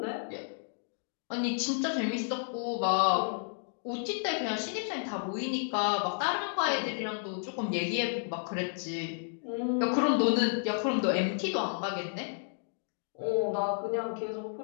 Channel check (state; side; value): silent; right; digital silence